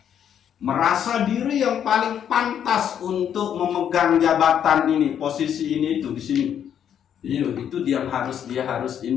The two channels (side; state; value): right; quieter; 9.1 dB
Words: merasa diri yang paling pantas untuk memegang jabatan ini, posisi ini itu di sini. Itu dia harus